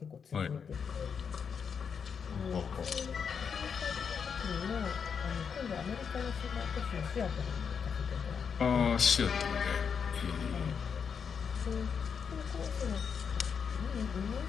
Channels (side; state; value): right; quieter; 6.6 dB